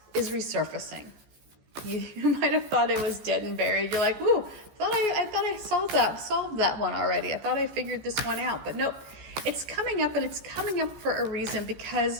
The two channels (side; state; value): left; late; 14 ms